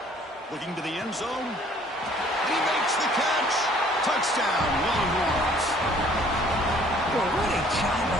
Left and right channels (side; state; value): both; normal; correlation 0.58